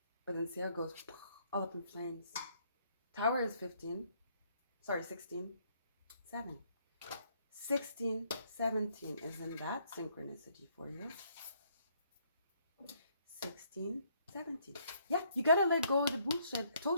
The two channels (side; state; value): both; inverted; correlation -0.68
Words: But then see how it goes all up in flames. Tower is 16, 7. 16, 17. Isn't that synchronicity for you? 16, 17. Yeah, you gotta let go of the bullshit. I